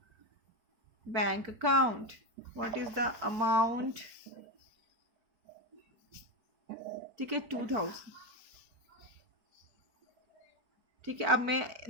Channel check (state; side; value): late; left; 4.5 ms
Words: bank account. What is the amount? ठीक है, 2000. ठीक है, अब मैं